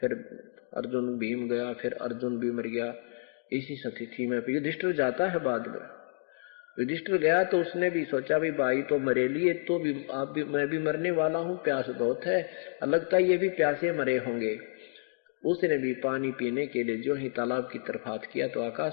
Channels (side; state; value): right; silent; digital silence